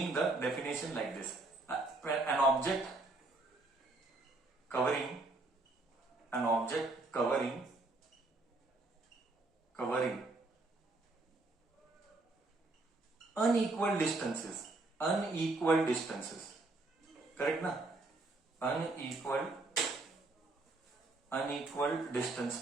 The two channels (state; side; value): quieter; left; 3.1 dB